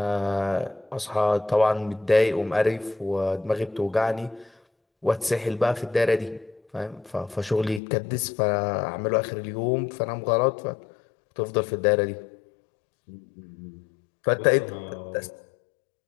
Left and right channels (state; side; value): drops out; right; at 7.8 s